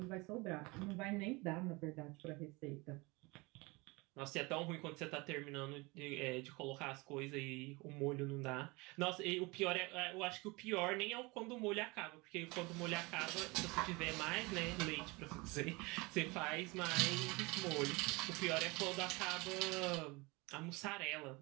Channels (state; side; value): quieter; left; 25.3 dB